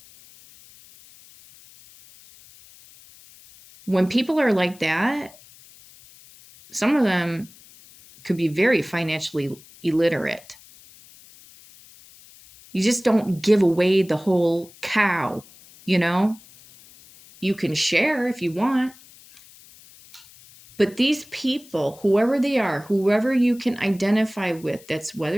When people are like that, some of them could be very financially illiterate. You just don't give away the whole cow, You can share if you want. But these people, whoever they are, whoever you can identify with, that's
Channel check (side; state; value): left; noise; hiss, 23 dB below the sound